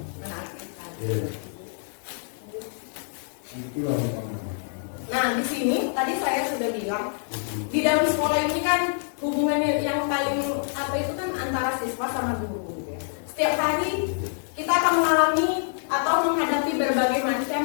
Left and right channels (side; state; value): right; silent; 58 dB below the other